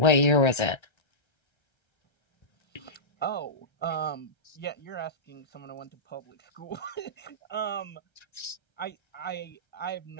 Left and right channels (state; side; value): late; right; 1.3 ms